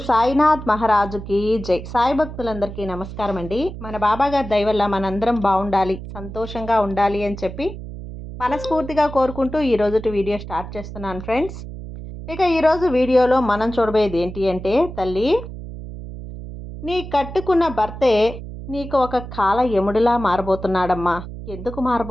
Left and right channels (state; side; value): noise; right; hum, 11 dB below the sound